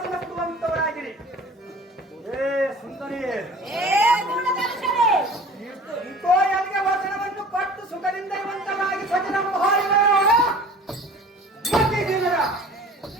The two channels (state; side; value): normal; both; correlation 0.44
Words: ಏ ಸುಂದರಿ, ಇಂಕೋ ಎಲ್ಲಿಗೆ ವಚನವನ್ನು ಕೊಟ್ಟು ಸುಖದಿಂದ ಇರುವಂತರಾಗಿ ಸಚಿರಂಭಾರಿಗಳ ಮತ್ತಿದ್ದೀರ.